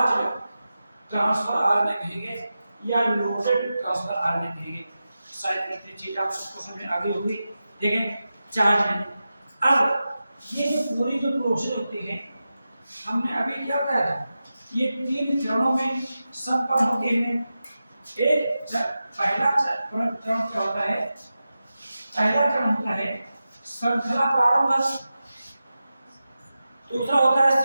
ट्रांसफर आरएनए कहेंगे या लोडेड ट्रांसफर आरएनए कहेंगे। शायद इतनी चीज आप सबको समझ में आ गई होगी। देखें चार्ज में अब ये जो पूरी जो प्रोसेस होती है, हमने अभी क्या कहा था, ये 3 चरणों में संपन्न होती है। एक पहला चरण क्या होता है, पहला चरण होता है श्रृंखला प्रारंभ, दूसरा होता है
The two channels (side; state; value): both; inverted; correlation -0.92